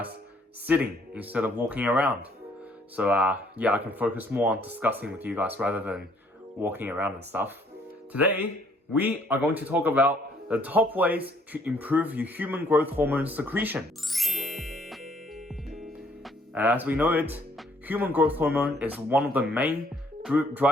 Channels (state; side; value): normal; both; correlation 0.64